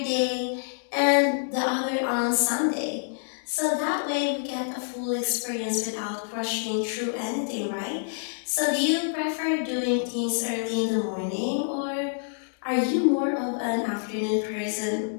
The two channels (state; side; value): silent; right; digital silence